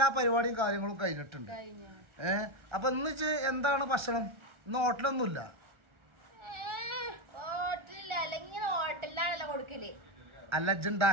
പരിപാടിയും കാര്യങ്ങളും കഴിഞ്ഞിട്ടുണ്ട്. അപ്പൊ ഇന്ന് എന്താണ് ഭക്ഷണം? ഇന്ന് ഹോട്ടലൊന്നുമില്ല. ഹോട്ടലിലാണല്ലോ കൊടുക്കല്. അല്ല,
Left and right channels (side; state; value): left; late; 1.3 ms